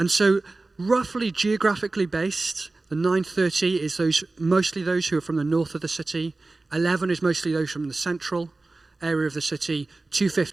so, roughly geographically based, the 9:30 is mostly those who are from the north of the city. 11 is mostly those from the central area of the city.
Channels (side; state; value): left; quieter; 3.3 dB